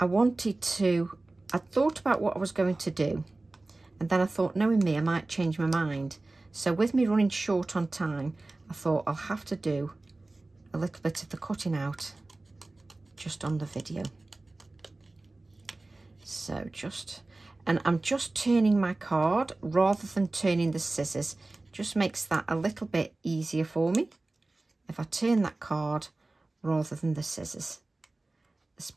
thought about what I was going to do, and then I thought, knowing me, I might change my mind. So with me running short on time, I thought I'll have to do a little bit of the cutting out just on the video. So and I'm just turning my card rather than turning the scissors. Just makes that a little bit easier for me if I turn that card rather than the scissors,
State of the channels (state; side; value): quieter; left; 3.0 dB